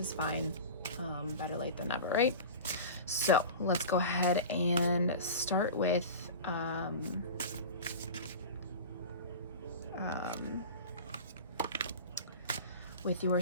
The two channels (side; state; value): both; inverted; correlation -0.32